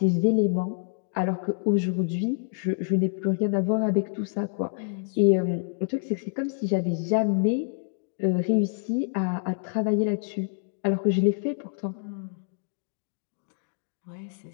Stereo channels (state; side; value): silent; right; digital silence